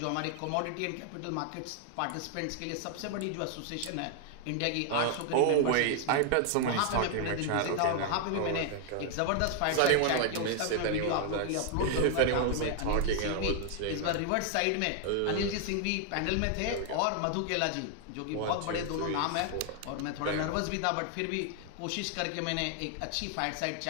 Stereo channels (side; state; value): both; different; correlation 0.00